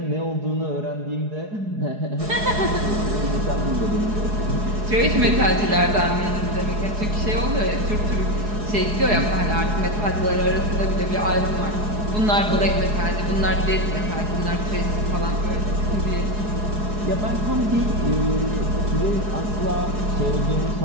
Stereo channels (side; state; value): left; late; 4.8 ms